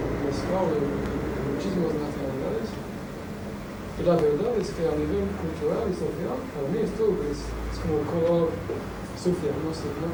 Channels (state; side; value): identical; both; correlation 1.00